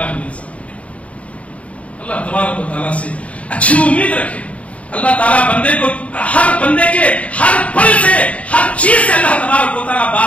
من ذالک۔ اللہ تبارک و تعالیٰ سے اچھی امید رکھے۔ اللہ تعالیٰ بندے کو ہر بندے کے ہر پل سے ہر چیز سے اللہ تبارک و تعالیٰ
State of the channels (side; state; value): right; late; 0.066 ms